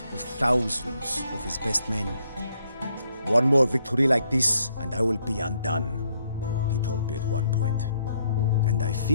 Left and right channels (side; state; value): both; inverted; correlation -0.72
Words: of thousands of his best men. "One more victory like this, and I will be undone," he told me at one point. And I